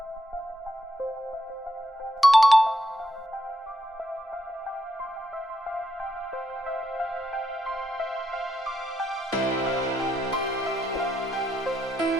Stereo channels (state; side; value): normal; both; correlation 0.80